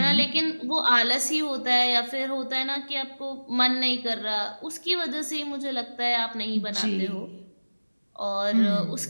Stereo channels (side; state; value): both; inverted; correlation -1.00